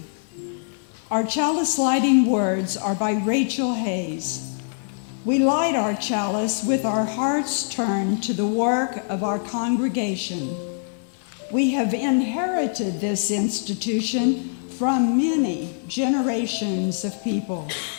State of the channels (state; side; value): silent; right; 55 dB below the other